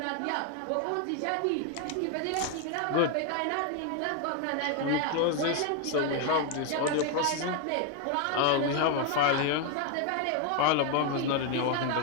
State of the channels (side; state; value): both; different; correlation 0.01